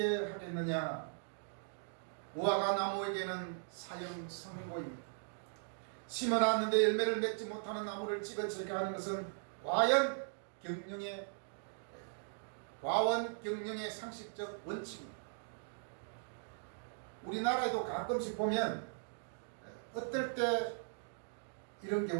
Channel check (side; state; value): left; silent; digital silence